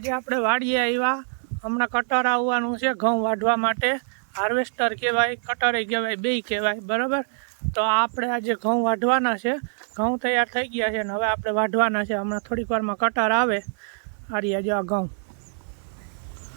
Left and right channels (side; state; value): left; silent; digital silence